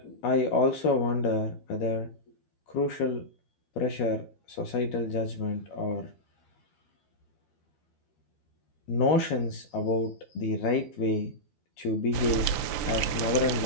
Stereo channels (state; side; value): late; right; 12 ms